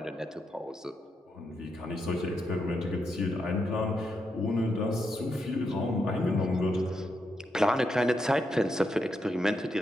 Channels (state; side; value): normal; both; correlation 0.83